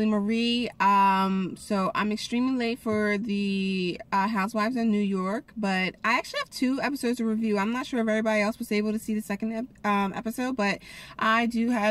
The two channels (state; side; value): identical; both; correlation 1.00